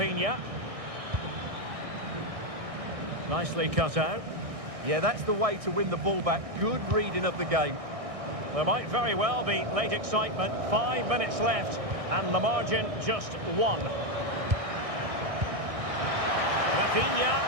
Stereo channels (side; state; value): left; late; 1.6 ms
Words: Nicely cut out. Yeah, that's the way to win the ball back. Good reading of the game. There might very well be late excitement. 5 minutes left. And the margin just 1. Rafinha.